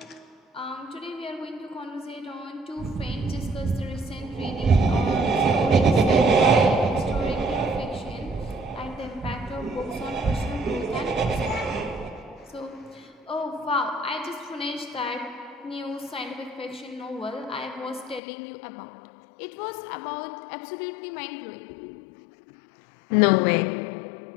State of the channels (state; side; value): drops out; right; at 18.2 s